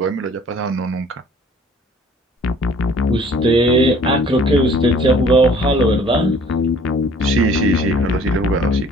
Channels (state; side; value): normal; both; correlation 0.55